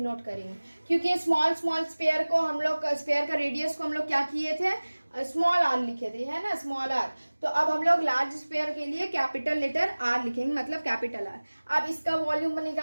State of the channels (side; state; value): both; inverted; correlation -1.00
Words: करेंगे क्योंकि स्मॉल स्पेयर को हम लोग स्पेयर का रेडियस को हम लोग क्या किए थे स्मॉल आर लिखे थे, है ना, स्मॉल आर। तो अब हम लोग लार्ज स्फीयर के लिए कैपिटल लेटर आर लिखेंगे, मतलब कैपिटल आर। अब इसका वॉल्यूम